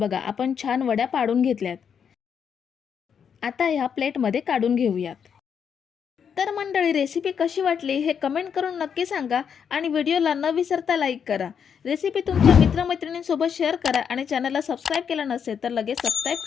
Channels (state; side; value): quieter; right; 7.4 dB